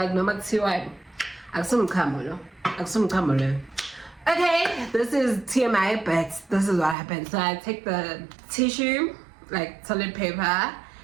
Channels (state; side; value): drops out; left; at 7.0 s